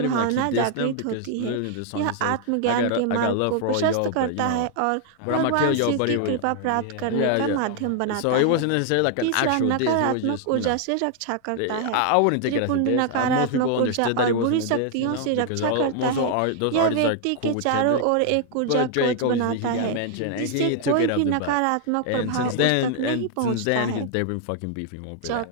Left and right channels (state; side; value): different; both; correlation 0.00